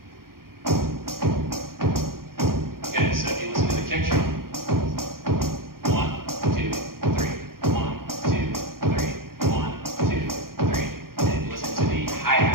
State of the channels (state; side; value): late; left; 0.92 ms